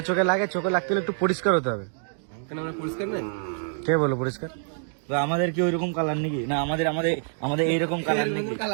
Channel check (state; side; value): silent; left; digital silence